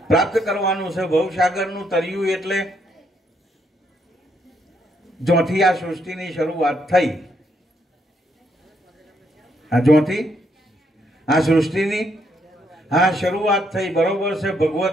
પ્રાપ્ત કરવાનું છે. ભવસાગરનું તરિયું એટલે જોથી આ સૃષ્ટિની શરૂઆત થઈ, આ જોથી આ સૃષ્ટિની આ શરૂઆત થઈ, બરોબર છે.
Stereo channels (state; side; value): normal; both; correlation 0.74